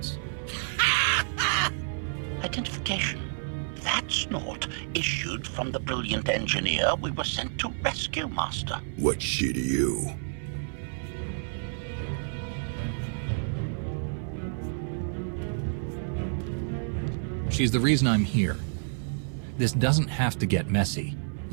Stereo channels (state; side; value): silent; left; digital silence